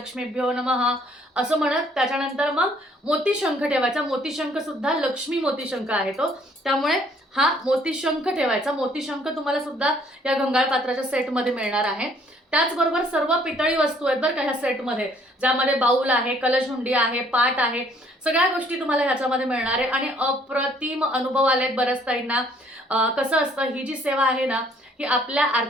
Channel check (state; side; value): normal; both; correlation 0.62